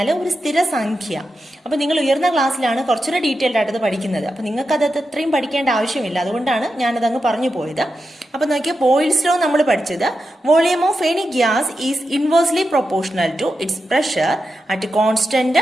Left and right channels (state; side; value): normal; both; correlation 0.89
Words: ഒരു സ്ഥിര സംഖ്യ. അപ്പോൾ നിങ്ങൾ ഉയർന്ന ക്ലാസ്സിലാണ് കുറച്ചുകൂടെ ഡീറ്റെയിൽഡ് ആയിട്ട് പഠിക്കുന്നത്. അപ്പോൾ നിങ്ങൾക്ക് അത് അത്രയും പഠിക്കേണ്ട ആവശ്യമില്ല. അതുകൊണ്ടാണ് ഞാനത് അങ്ങ് പറഞ്ഞു പോയത്. അപ്പോൾ നോക്കിയാൽ ബോയിൽസ് ലോ നമ്മൾ പഠിച്ചത് volume of any gas is inversely proportional to its pressure at